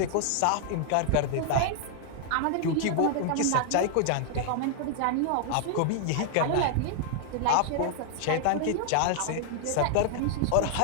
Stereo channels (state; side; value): different; both; correlation -0.01